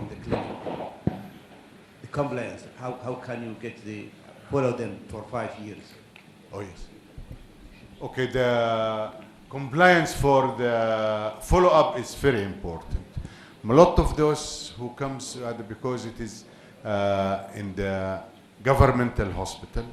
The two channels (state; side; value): identical; both; correlation 1.00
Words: the clinic. The compliance, how can you follow them for 5 years? Oh, yes. Okay, the compliance for the follow-up is very important. A lot of those who comes because it is in the governmental hospital